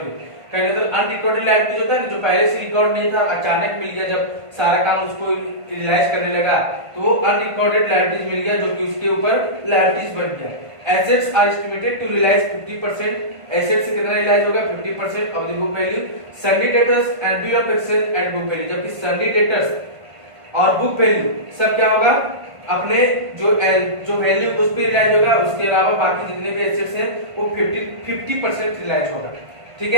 कहने तो अनरिकॉर्डेड लायबिलिटीज होता है ना, जो पहले से रिकॉर्ड नहीं था अचानक मिल गया, जब सारा काम उसको रियलाइज करने लगा तो वो अनरिकॉर्डेड लायबिलिटीज मिल गया जो कि उसके ऊपर लायबिलिटीज बन गया। Assets are estimated to realise 50%, asset से कितना रियलाइज होगा 50% of the book value. Sundry debtors and bill of exchange and book value, जबकि सन्डी डेटर्स और बुक वैल्यू सब क्या होगा अपने जो वैल्यू उस पर रिलाइज होगा, उसके अलावा बाकी जितने भी एसेट्स हैं वो 50% रिलाइज होगा। ठीक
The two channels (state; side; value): late; left; 1.5 ms